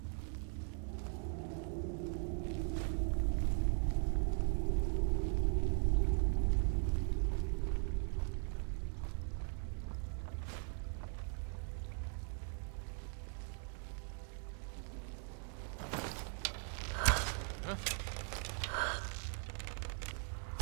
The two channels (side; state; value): left; silent; 51 dB below the other